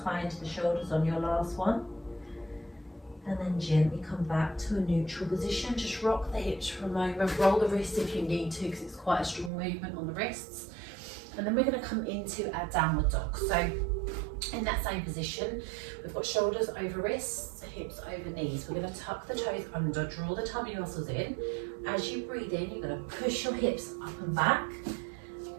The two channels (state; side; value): drops out; left; at 9.5 s